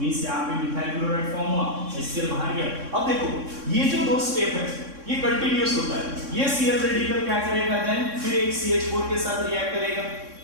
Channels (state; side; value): late; left; 3.6 ms